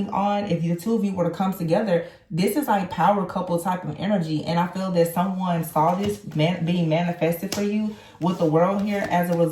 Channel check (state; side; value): identical; both; correlation 1.00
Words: on, if the two of you were to come together, this is like power couple type of energy. And I feel that someone saw this being manifested for you with the World here as a